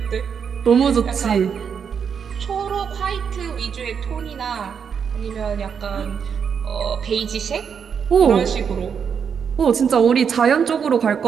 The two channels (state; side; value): quieter; left; 7.0 dB